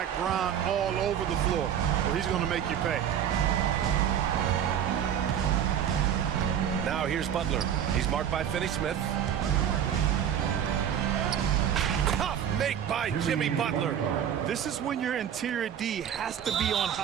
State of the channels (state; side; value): quieter; left; 9.3 dB